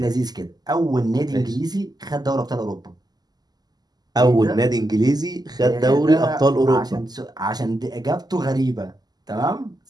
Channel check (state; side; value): late; left; 0.20 ms